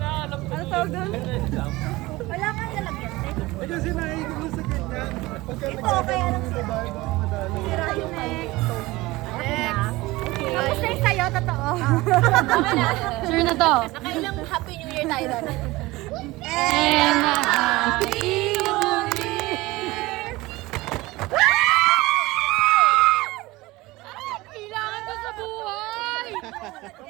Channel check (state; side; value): quieter; left; 20.2 dB